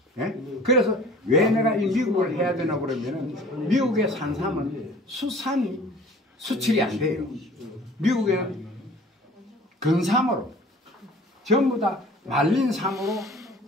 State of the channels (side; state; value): both; normal; correlation 0.47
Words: 예? 그래서 왜 내가 이 미국을 해야 되나 그러면은 미국의 산삼은 수산이 수출이 안 돼요. 미국에는 근삼으로 전부 다 말린 삼으로